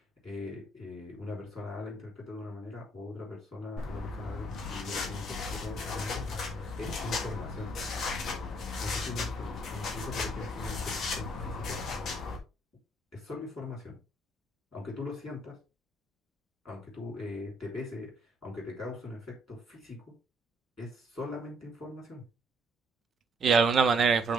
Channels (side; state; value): both; normal; correlation 0.68